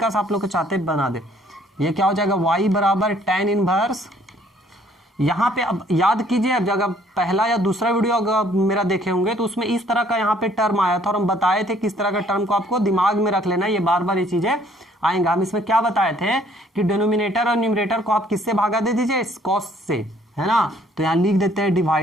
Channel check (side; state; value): both; normal; correlation 0.61